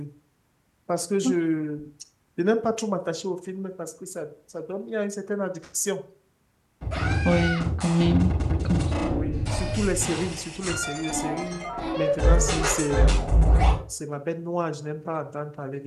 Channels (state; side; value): identical; both; correlation 1.00